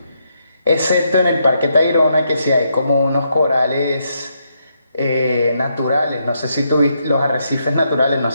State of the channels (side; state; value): both; inverted; correlation -0.79